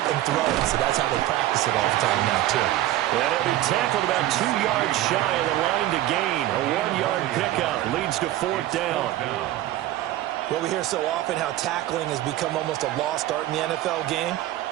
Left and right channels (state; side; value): quieter; left; 14.5 dB